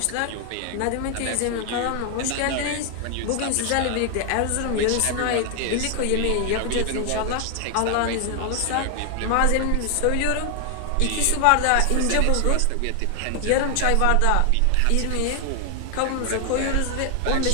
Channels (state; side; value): different; both; correlation 0.00